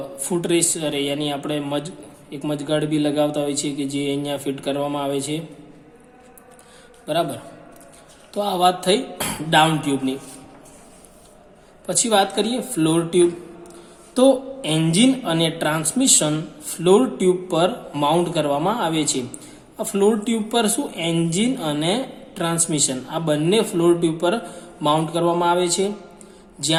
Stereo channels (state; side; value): identical; both; correlation 1.00